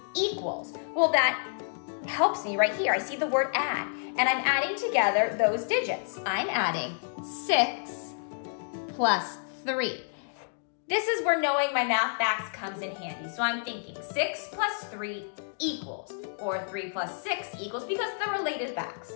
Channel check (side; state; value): right; silent; digital silence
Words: equals. Well, that helps me right here. I see the word add and I'm adding together those digits. I'm adding 6 plus 3. This is where knowing my math facts comes in handy. So I'm thinking 6 plus 3 equals, or 3 plus 6 equals, because they're related facts.